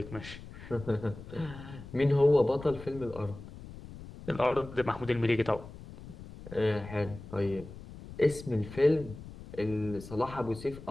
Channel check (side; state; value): left; noise; rumble, 14 dB below the sound